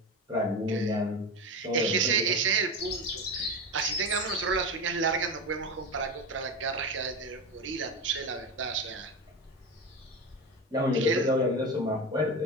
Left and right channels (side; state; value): both; normal; correlation 0.21